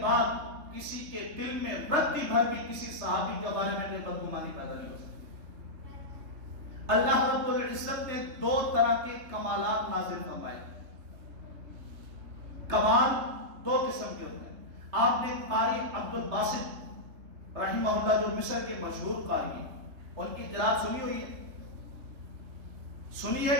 بعد کسی کے دل میں رتی بھر بھی کسی صحابی کے بارے میں کوئی بدگمانی پیدا نہیں ہو سکتی. اللہ رب العزت نے دو طرح کے کمالات نازل فرمائے. کمال دو قسم کے ہوتے ہیں. آپ نے قاری عبد الباسط رحمہ اللہ جو مصر کے مشہور قاری ہیں، ان کی قرات سنی ہوئی ہے؟ سنی ہے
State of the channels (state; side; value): late; left; 3.2 ms